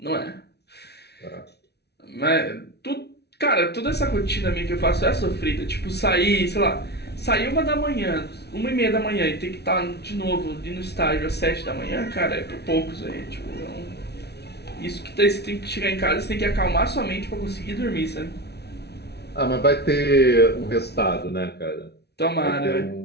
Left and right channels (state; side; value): late; right; 0.49 ms